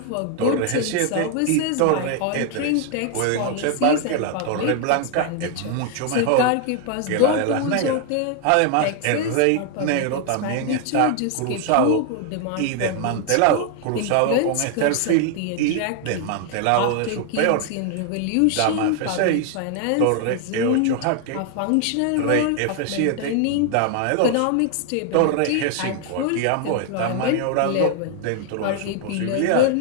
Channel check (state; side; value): different; both; correlation 0.00